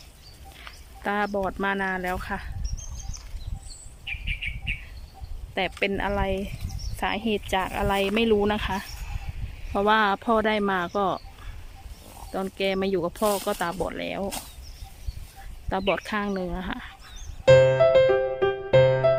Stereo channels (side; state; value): both; identical; correlation 1.00